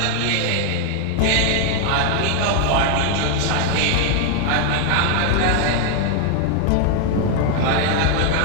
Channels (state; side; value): different; both; correlation 0.00